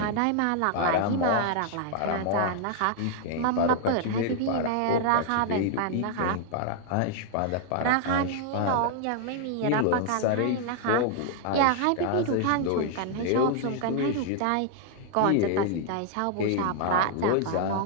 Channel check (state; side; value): different; both; correlation 0.00